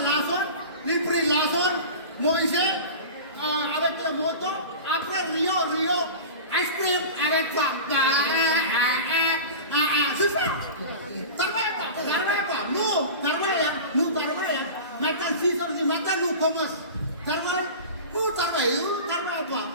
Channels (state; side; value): inverted; both; correlation -0.33